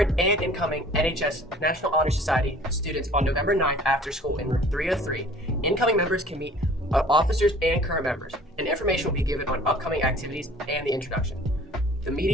and incoming NHS National Honor Society students on November 9th after school in room 303. Incoming members can meet officers and current members, and information will be given on upcoming activities and the introduction. The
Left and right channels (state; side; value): normal; both; correlation 0.50